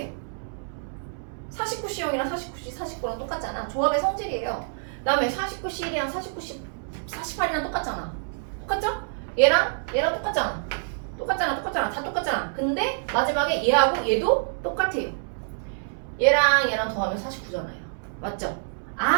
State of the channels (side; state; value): left; silent; 60 dB below the other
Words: 49C형이랑 49C 49랑 똑같잖아. 조합의 성질이에요. 그 다음에 49C1이랑 49C 48이랑 똑같잖아. 똑같죠? 얘랑 똑같잖아. 똑같잖아. 다 똑같잖아. 근데 마지막에 얘하고 얘도 똑같아요. 얘랑 더하면 49잖아요. 맞죠?